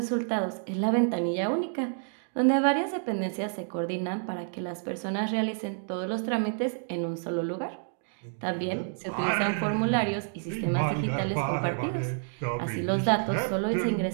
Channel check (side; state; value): left; silent; digital silence